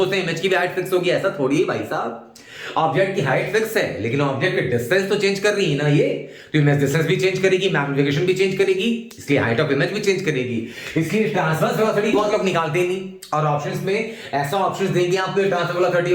हैं इमेज की भी हाइट फिक्स होगी, ऐसा थोड़ी है भाई साहब। ऑब्जेक्ट की हाइट फिक्स है, लेकिन ऑब्जेक्ट की डिस्टेंस तो चेंज कर रही है ना ये, तो इमेज डिस्टेंस भी चेंज करेगी, मैग्निफिकेशन भी चेंज करेगी, इसलिए हाइट ऑफ इमेज भी चेंज करेगी। इसलिए ट्रांसवर्स वेलोसिटी बहुत लोग निकालते नहीं, और ऑप्शंस में ऐसा ऑप्शंस देंगे आपको, ट्रांसवर्स वेलोसिटी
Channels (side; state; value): both; identical; correlation 1.00